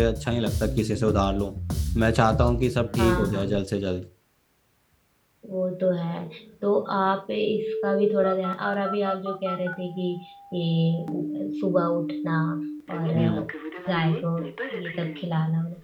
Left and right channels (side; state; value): both; identical; correlation 1.00